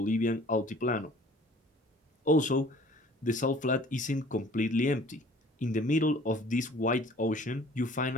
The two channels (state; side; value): normal; both; correlation 0.51